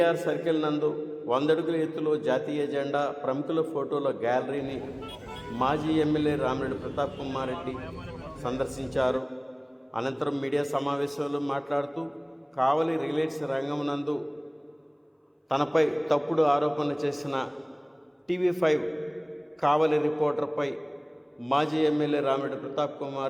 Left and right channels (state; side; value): identical; both; correlation 1.00